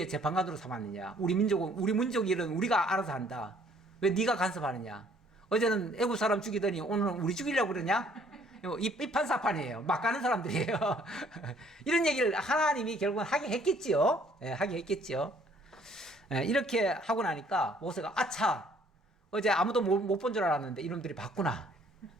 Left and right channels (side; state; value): both; normal; correlation 0.61